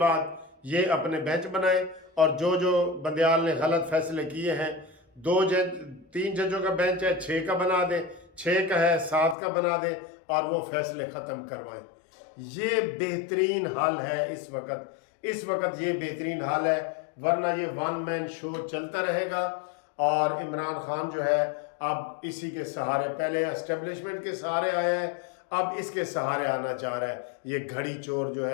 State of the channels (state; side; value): drops out; right; at 9.3 s